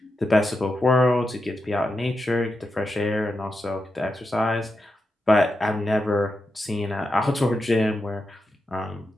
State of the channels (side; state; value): both; normal; correlation 0.87